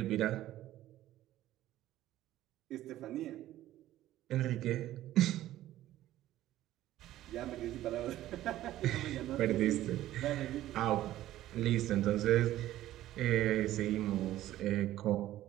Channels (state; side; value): quieter; left; 14.1 dB